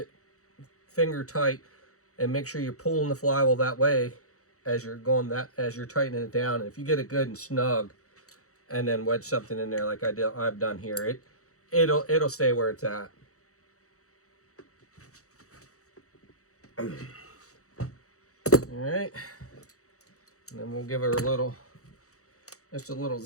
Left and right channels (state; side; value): late; right; 0.65 ms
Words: finger tight and make sure you're pulling the flywheel that way as you're tightening it down. And if you get it good and snug, and then wedge something in there like I've done here, it'll stay where it's at. All right, and then we'll give her just a little